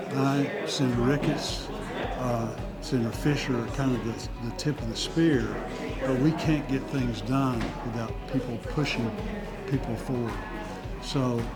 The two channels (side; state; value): both; identical; correlation 1.00